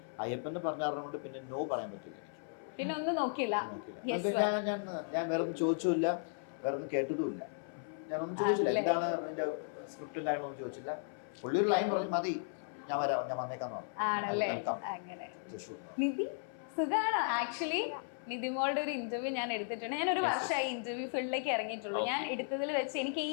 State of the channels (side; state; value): right; silent; 54 dB below the other